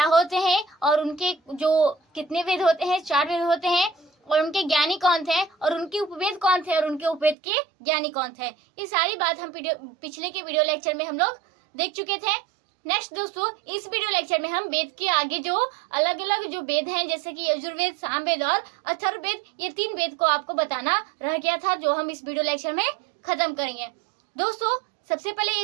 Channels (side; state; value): left; drops out; at 7.4 s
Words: होते हैं और उनके जो कितने वेद होते हैं, 4 वेद होते हैं, और उनके ज्ञानी कौन थे और उनके उपवेद कौन थे और उनके उपवेद के ज्ञानी कौन थे। ये सारी बात हम पिछले के वीडियो लेक्चर में हम लोग देख चुके थे। नेक्स्ट दोस्तों, इस वीडियो लेक्चर में हम वेद के आगे जो अलग अलग जो वेद हैं, जैसे कि यजुर्वेद, सामवेद और अथर्ववेद, ये 3 वेद को आपको बताना रह गया था, जो हम इस वीडियो लेक्चर में खत्म करेंगे। दोस्तों, सबसे पहले